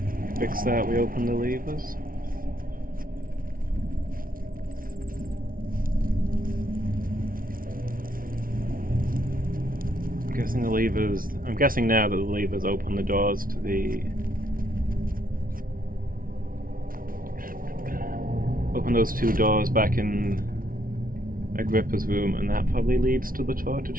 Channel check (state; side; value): late; left; 0.41 ms